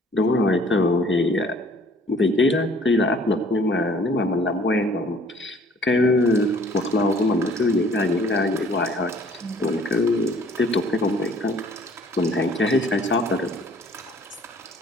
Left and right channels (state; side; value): normal; both; correlation 0.56